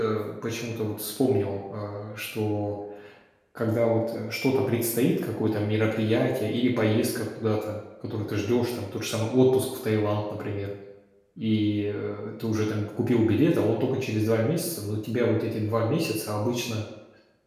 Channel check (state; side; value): identical; both; correlation 1.00